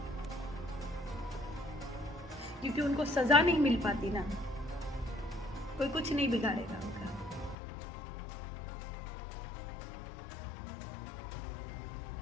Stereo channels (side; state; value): right; drops out; at 7.6 s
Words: क्योंकि उनको सजा नहीं मिल पाती ना, कोई कुछ नहीं बिगाड़ेगा उनका।